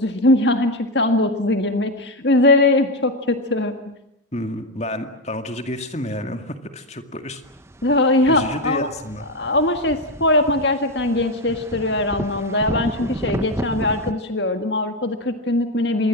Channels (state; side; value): normal; both; correlation 0.10